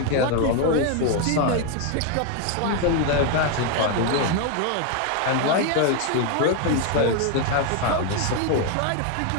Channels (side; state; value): both; different; correlation 0.01